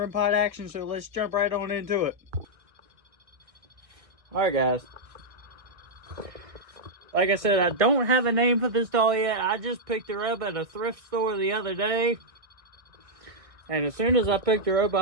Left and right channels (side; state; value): left; late; 1.6 ms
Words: pod action, so let's jump right on into it. Alright guys. Like I said, I don't have a name for this doll yet. I just picked her up at a thrift store the other day. And as soon as I picked her up,